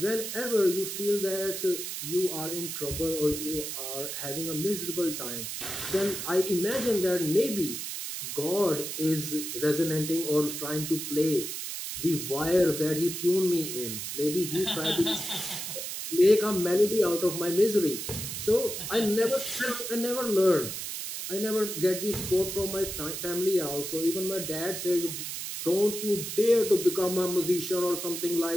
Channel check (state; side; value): noise; right; hiss, 5 dB below the sound